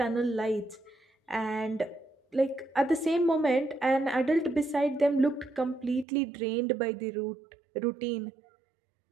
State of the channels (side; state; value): left; drops out; at 6.1 s